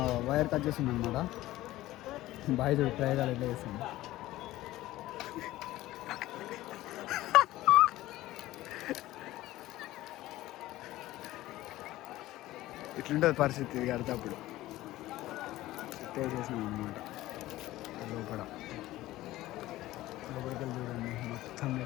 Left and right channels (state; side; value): quieter; right; 16.4 dB